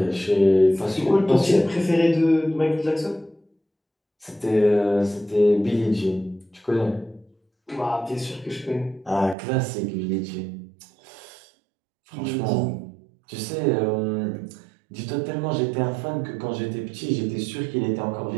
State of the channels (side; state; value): left; drops out; at 9.3 s